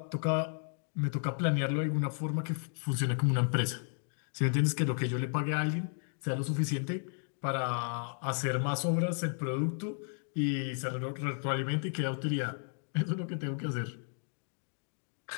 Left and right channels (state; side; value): silent; right; 55 dB below the other